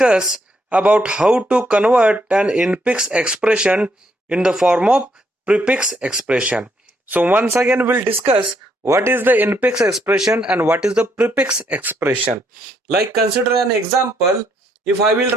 about how to convert an infix expression in the form of prefix expression. So once again we'll discuss what is the infix expression and what is the prefix expression. Like consider an example, if I will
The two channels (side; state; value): both; normal; correlation 0.73